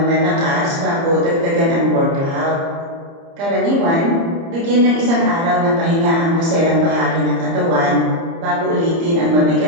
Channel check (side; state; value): left; late; 30 ms